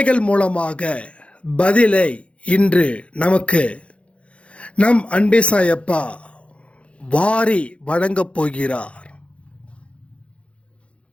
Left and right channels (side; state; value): right; late; 0.061 ms